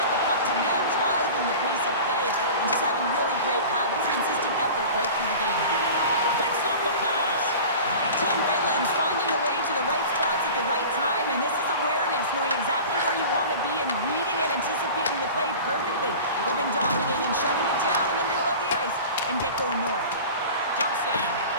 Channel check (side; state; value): both; inverted; correlation -0.37